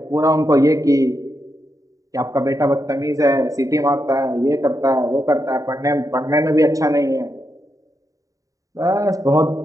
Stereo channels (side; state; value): left; late; 0.16 ms